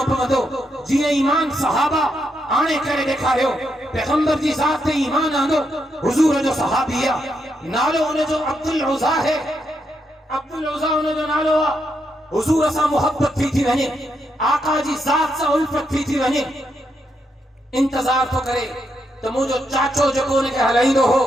पवंदो जीअं ईमान सहाबा आणे करे ॾेखारियो। पैगंबर जी ज़ात ते ईमान आंदो हुज़ूर जो सहाबी आहे, नालो उनजो अब्दुल उज़ा है। अब्दुल उज़ा उनजो नालो आहे। हुज़ूर सां मोहब्बत थी वञे, आका जी ज़ात सां उल्फत थी वञे। इंतज़ार थो करे त मुंहिंजो चाचो जेको उनखे हलाईंदो हो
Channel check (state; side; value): normal; both; correlation 0.81